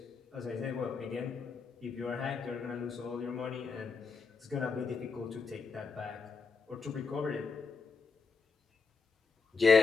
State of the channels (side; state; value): right; quieter; 4.9 dB